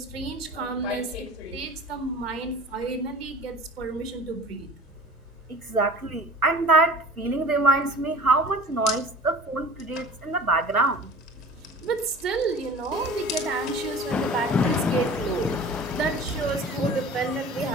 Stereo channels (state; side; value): normal; both; correlation 0.41